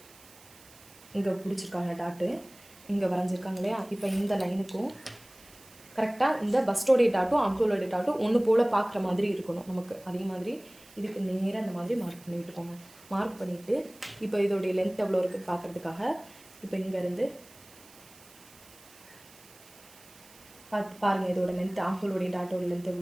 இங்கே பிடிச்சிருக்காங்க டாட்டு, இங்கே வரைஞ்சிருக்காங்க இல்லையா. இப்போ இந்த லைனுக்கும் கரெக்டாக இந்த பஸ்டோடைய டாட்டும் ஆம்கோலோடைய டாட்டும் ஒன்று போல் பார்க்குற மாதிரி இருக்கணும் நமக்கு. அதே மாதிரி இதுக்கு நேராக அந்த மாதிரி மார்க் பண்ணி விட்டுக்கோங்க. மார்க் பண்ணிவிட்டு இப்போ இதோடைய லென்த் எவ்வளோ இருக்குன்னு பார்க்குறதுக்காக இப்போ இங்கேருந்து பாருங்கள் இதோட லென்த் ஆம்கோலோடைய டாட்டோட லென்த்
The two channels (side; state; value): right; noise; hiss, 23 dB below the sound